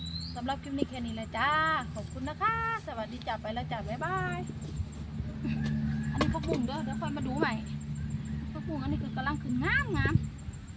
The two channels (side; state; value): both; identical; correlation 1.00